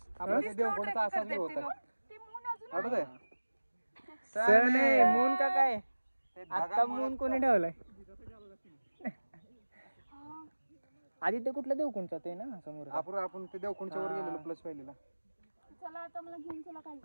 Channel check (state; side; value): inverted; both; correlation -1.00